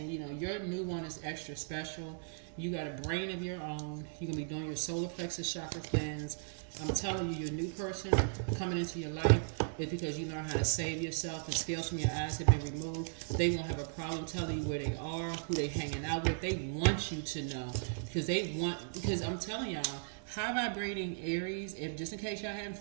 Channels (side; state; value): left; silent; digital silence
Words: your new one is extra special. You got a brain of your own. You're going to be doing your solar plexus chakra cleanse. I'm telling you, your new person coming into your life is because you know how to save yourself. The scales from your eyes have been removed. They won't have a problem telling you where they are, who they hanging out with. They want you to know because I'm telling y'all, high vibrating Aries, if just in case y'all haven't